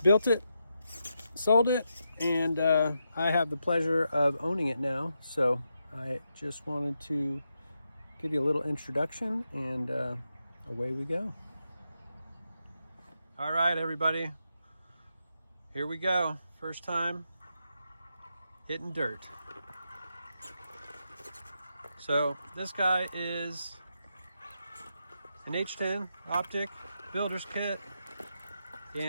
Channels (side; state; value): both; inverted; correlation -0.84